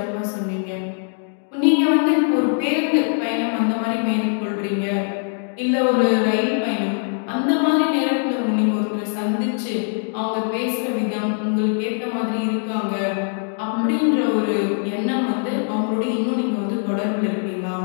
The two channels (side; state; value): right; silent; 57 dB below the other